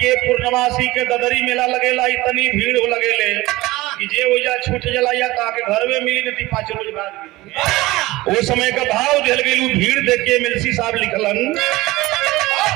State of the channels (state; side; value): quieter; left; 19.3 dB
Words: पूर्णमासी के ददरी मेला लगेला। इतनी भीड़ हो लगेले कि जे वजह छूट जलाया ताकि घर में मिली नहीं 5 रोज बाद। वो समय का भाव दिल गई भीड़ देख के मिलसी साहब लिखलन,